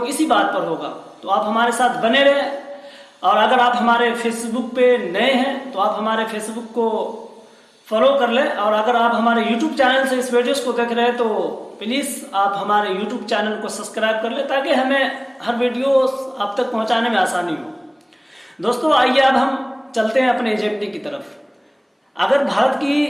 इसी बात पर होगा। तो आप हमारे साथ बने रहें। और अगर आप हमारे फेसबुक पे नए हैं तो आप हमारे फेसबुक को फॉलो कर लें। और अगर आप हमारे यूट्यूब चैनल से इस वीडियोस को देख रहे हैं तो प्लीज़ आप हमारे यूट्यूब चैनल को सब्सक्राइब कर लें ताकि हमें हर वीडियो आप तक पहुंचाने में आसानी हो। दोस्तों, आइए अब हम चलते हैं अपने एजेंडे की तरफ। अगर भारत की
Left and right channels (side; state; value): both; identical; correlation 1.00